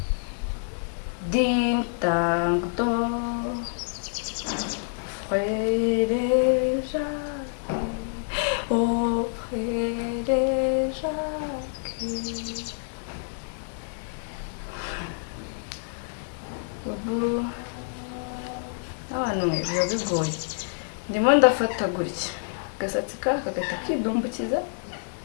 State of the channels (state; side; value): silent; right; digital silence